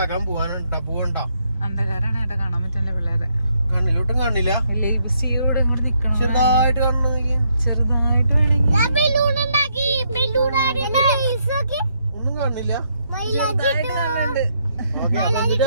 പോവണ്ടോ. അന്ധകാരാണ് ഏട്ടാ, കാണാൻ പറ്റില്ല പിള്ളേരെ. കണ്ണിലോട്ടും കാണില്ല, ലേബിസിയോട് ഇങ്ങോട്ട് നിക്കണം. ചെറുതായിട്ട് കാണുന്നു. ചെറുതായിട്ട് വേണമെങ്കിൽ ഒന്നും കാണില്ല. ഓക്കെ,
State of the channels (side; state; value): both; inverted; correlation -0.75